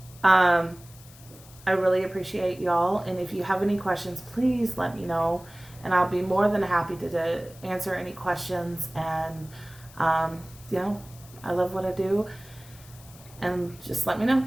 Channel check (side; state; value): left; noise; hiss, 22 dB below the sound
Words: I really appreciate y'all, and if you have any questions, please let me know, and I'll be more than happy to answer any questions. And I love what I do, and just let me know.